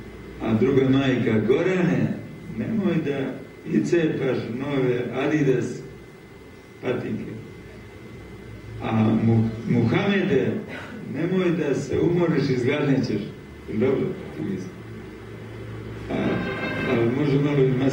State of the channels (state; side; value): identical; both; correlation 1.00